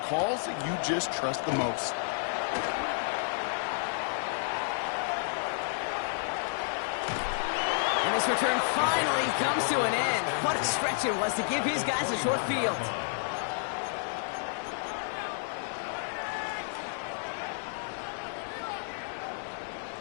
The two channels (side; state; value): right; silent; digital silence